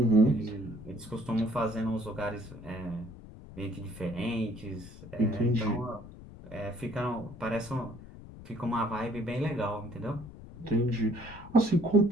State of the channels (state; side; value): noise; left; rumble, 15 dB below the sound